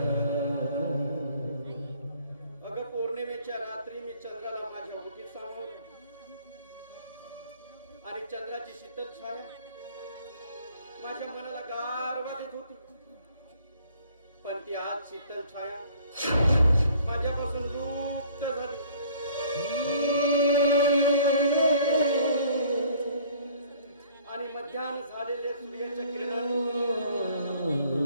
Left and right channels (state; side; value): inverted; both; correlation -0.56